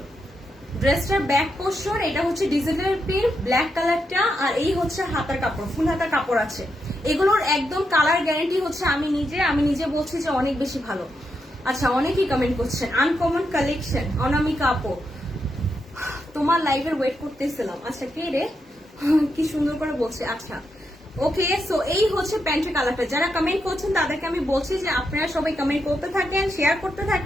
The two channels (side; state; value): both; normal; correlation 0.83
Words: ড্রেসটার ব্যাক পোর্শন, এটা হচ্ছে ডিজিটাল প্রিন্ট ব্ল্যাক কালারটা, আর এই হচ্ছে হাতার কাপড়, ফুল হাতা কাপড় আছে। এগুলোর একদম কালার গ্যারান্টি হচ্ছে আমি নিজে বলছি যে অনেক বেশি ভালো। আচ্ছা অনেকেই কমেন্ট করছেন আনকমন কালেকশন, অনামিকা আপু তোমার লাইভের ওয়েট করতেছিলাম। আচ্ছা কে রে, কি সুন্দর করে বলছে। আচ্ছা ওকে, সো এই হচ্ছে প্যান্টের কালারটা। যারা কমেন্ট করছেন তাদেরকে আমি বলছি যে আপনারা সবাই কমেন্ট করতে থাকেন, শেয়ার করতে